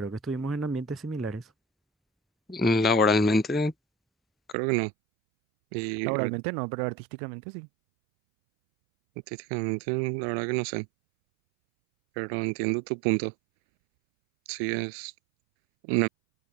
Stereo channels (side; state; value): left; drops out; at 4.5 s